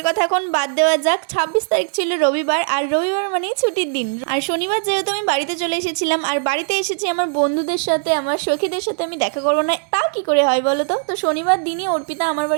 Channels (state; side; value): silent; left; 66 dB below the other